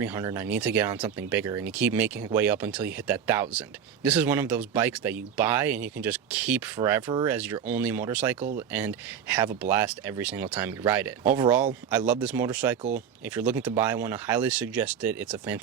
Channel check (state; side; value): quieter; left; 8.0 dB